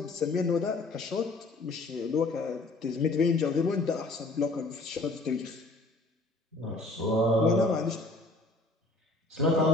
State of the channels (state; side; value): quieter; right; 3.0 dB